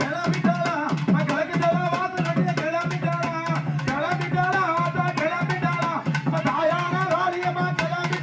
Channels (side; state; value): both; identical; correlation 1.00